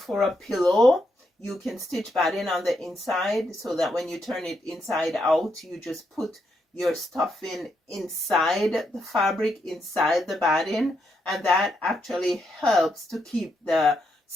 a pillow. You can stitch batting on the inside so that when you turn it inside out, you just put your stuffing inside the fabric, inside the batting, and that actually helps to keep the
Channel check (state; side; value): normal; both; correlation 0.80